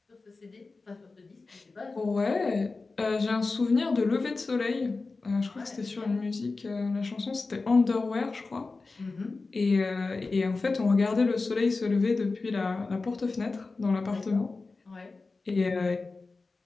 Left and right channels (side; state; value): right; quieter; 3.8 dB